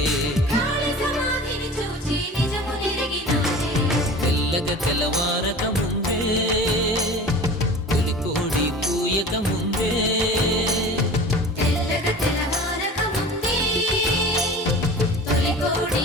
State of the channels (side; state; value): both; normal; correlation 0.38